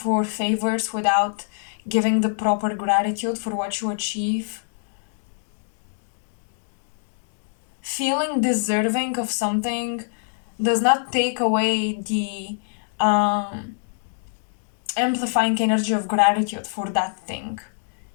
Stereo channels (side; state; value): right; silent; digital silence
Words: favors without giving the proper gratitude for what you achieve. Feeling deserving of something does not take away the amplifying energy of gratitude for that thing.